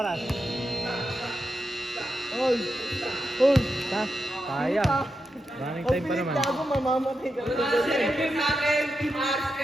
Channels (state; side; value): normal; both; correlation 0.87